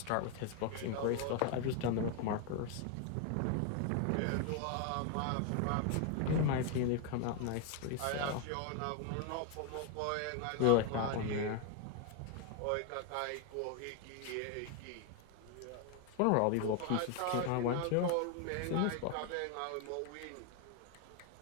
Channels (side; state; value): both; different; correlation 0.01